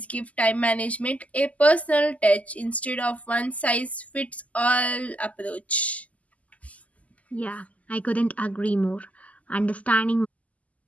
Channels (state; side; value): late; right; 0.072 ms